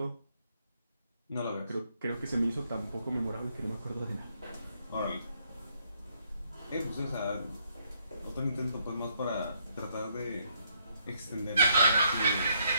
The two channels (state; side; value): inverted; both; correlation -0.72